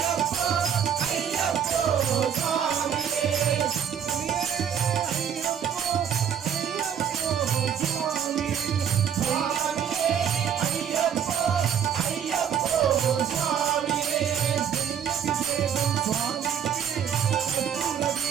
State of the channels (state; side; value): quieter; left; 8.4 dB